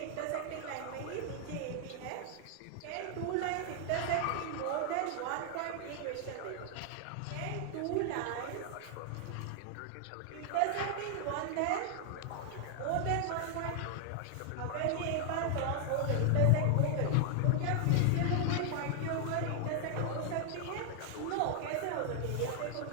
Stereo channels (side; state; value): both; different; correlation 0.00